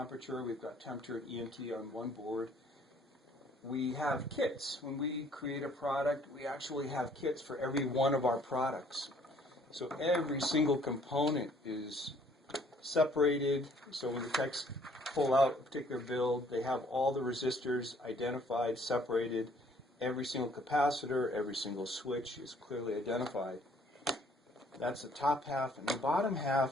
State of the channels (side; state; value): both; normal; correlation 0.61